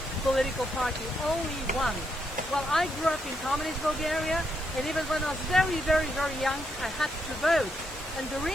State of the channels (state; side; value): normal; both; correlation 0.79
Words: political party, only one. Well, I grew up in communist Bulgaria, and even when I was very, very, very young, I had to vote. And the